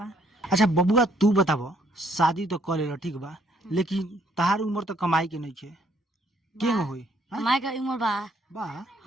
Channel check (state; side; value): normal; both; correlation 0.67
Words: अच्छा बबुआ तू बताव, शादी तो कर लेला ठीक बा, लेकिन तहार उम्र तो कमाई के नहीं छे, केंग होई? कमाई का उम्र बा। बा